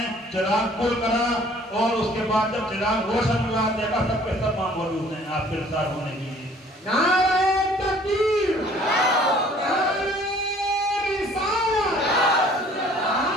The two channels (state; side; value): normal; both; correlation 0.55